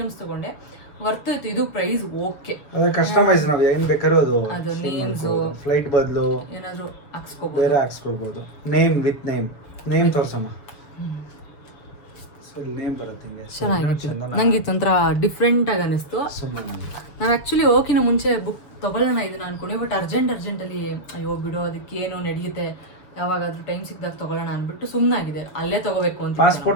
ತೊಗೊಂಡೆ ವರ್ತ್ ಇತ್ತು. ಇದು ಪ್ರೈಸ್ ಓಕೆ. ಅದು ಕಸ್ಟಮೈಸ್ ನಾವು ಏನ್ ಬೇಕಾದ್ರೂ ಅದು ನೇಮ್ಸ್ ಫ್ಲೈಟ್ ಬದಲು ಏನಾದ್ರು ಹಾಕ್ಸ್ಕೋಬಹುದು, ಬೇರೆ ಹಾಕ್ಸ್ಕೊಳ್ಬಹುದು. ನೇಮ್ ವಿತ್ ನೇಮ್ ತೋರ್ಸಮ್ಮ. ಸೊ ನೇಮ್ ಬರುತ್ತೆ ಹಿಂಗೆ. ಚೆನ್ನಾಗಿತ್ತು. ನಂಗೆ ಇದು ಒಂಥರ ಡಿಫ್ರೆಂಟ್ ಆಗಿ ಅನಿಸ್ತು. ನಾವು ಆ್ಯಕ್ಚುಲಿ ಹೋಗಿನ ಮುಂಚೆ ಬುಕ್ ತೊಗೊಳ್ಳೋಣ ಇದನ್ನ ಅನ್ಕೊಂಡೆ, ಬಟ್ ಅರ್ಜೆಂಟಲ್ಲಿ ಅಯ್ಯೋ ಬಿಡೋ ಅದಕ್ಕೆ ಏನೋ ನಡೆಯುತ್ತೆ, ಯಾವಾಗಾದ್ರೂ ಟೈಮ್ ಸಿಕ್ಕಿದಾಗ ತೊಗೊಳ್ಳೋಣ ಅಂದ್ಬಿಟ್ಟು ಸುಮ್ಮನಾಗಿದೆ. ಅಲ್ಲೇ ತೊಗೋಬೇಕು ಅಂತ.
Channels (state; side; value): late; right; 6.6 ms